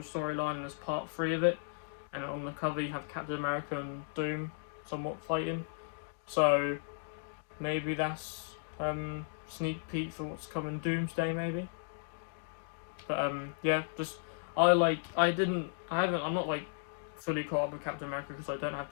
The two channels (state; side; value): silent; right; digital silence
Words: storyline, and is part 3 of it. And on the cover you have Captain America and Doom somewhat fighting. So maybe that's sneak peek for what's coming Doomsday maybe. But yeah, just I'm not fully caught up with Captain America because I don't have